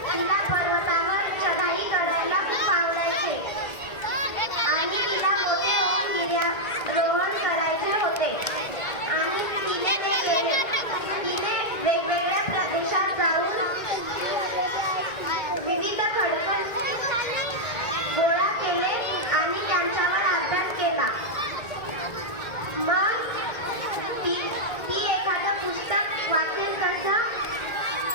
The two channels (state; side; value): late; right; 1.9 ms